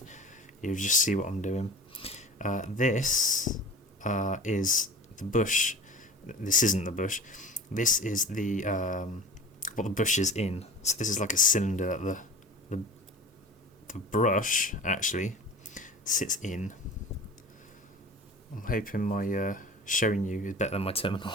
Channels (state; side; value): normal; both; correlation 0.37